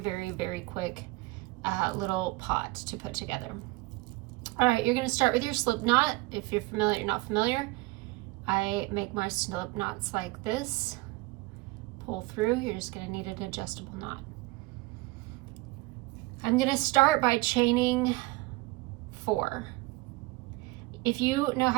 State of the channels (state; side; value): quieter; left; 21.4 dB